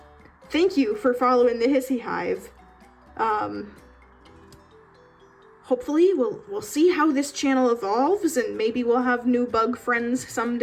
Thank you for following the Hissy Hive. Hopefully we'll see how this channel evolves, and maybe we'll have new bug friends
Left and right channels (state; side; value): identical; both; correlation 1.00